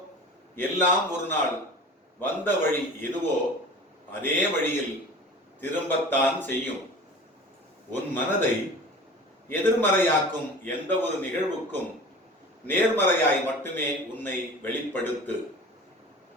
எல்லாம் ஒரு நாள் வந்த வழி எதுவோ அதே வழியில் திரும்பத்தான் செய்யும். உன் மனதை எதிர்மறையாக்கும் எந்த ஒரு நிகழ்வுக்கும் நேர்மறையாய் மட்டுமே உன்னை வெளிப்படுத்து.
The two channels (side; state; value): both; normal; correlation 0.39